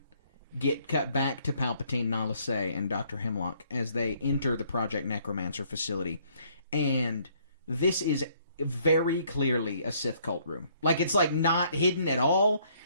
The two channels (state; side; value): inverted; both; correlation -0.65